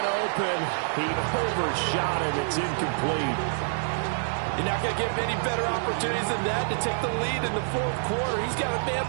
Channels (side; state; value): left; silent; digital silence